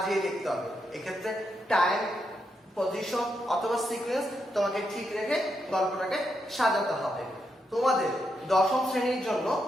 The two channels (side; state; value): both; normal; correlation 0.82